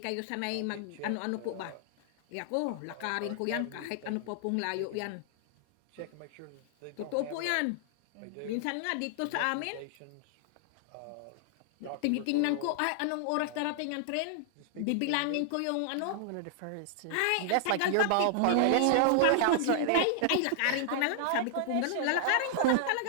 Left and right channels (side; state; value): both; different; correlation -0.01